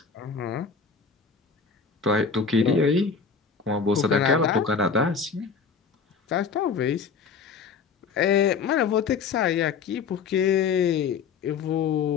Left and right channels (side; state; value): right; quieter; 5.6 dB